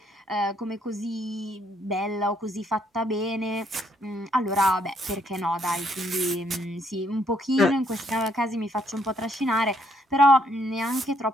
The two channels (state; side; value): normal; both; correlation 0.70